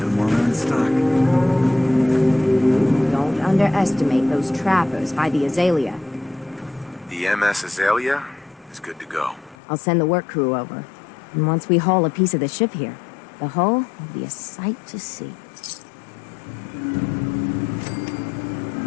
them while they're in stock. Don't underestimate those trappers by the Azalea. The MS Azalea is good to go. I'll send the work crew over. And once we haul a piece of the ship here, the hull will be a sight to see.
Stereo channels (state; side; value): drops out; right; at 9.6 s